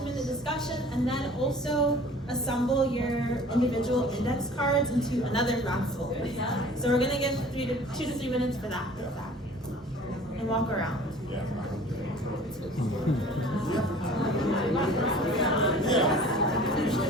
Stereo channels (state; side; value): normal; both; correlation 0.47